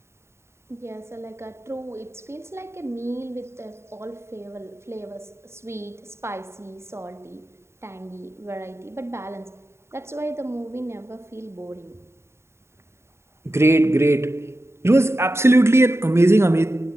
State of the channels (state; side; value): late; left; 0.13 ms